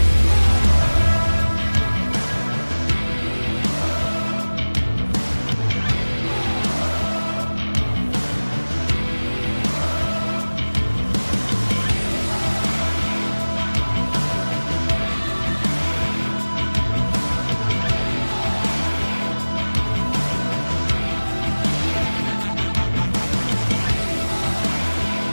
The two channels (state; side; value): inverted; both; correlation -1.00